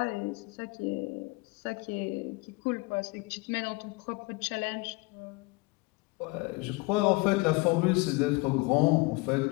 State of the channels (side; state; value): right; quieter; 25.0 dB